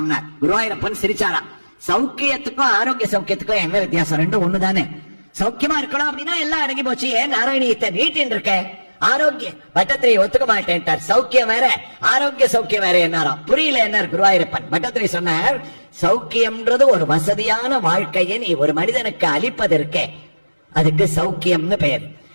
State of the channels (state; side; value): inverted; both; correlation -1.00